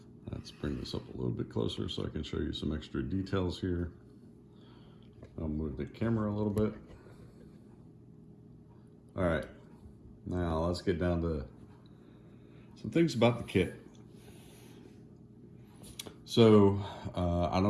Let's bring this up a little bit closer so I can show you some extra details here. I'll move the camera a little bit. All right, now let's get down to some things about the kit. So, I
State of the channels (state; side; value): identical; both; correlation 1.00